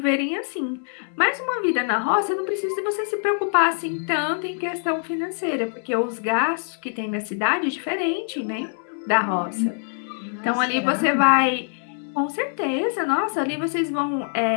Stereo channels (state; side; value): silent; right; 63 dB below the other